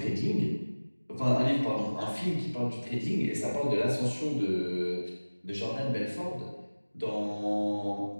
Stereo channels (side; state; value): both; inverted; correlation -1.00